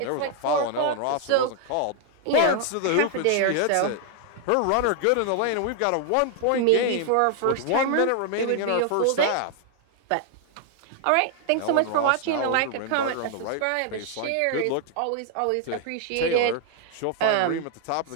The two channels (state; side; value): different; both; correlation 0.00